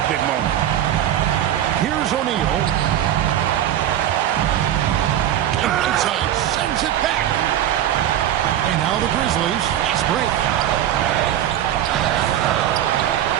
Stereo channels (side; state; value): left; quieter; 11.5 dB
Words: big moment. Here's O'Neal. And inside sends it back. And now the Grizzlies fast break.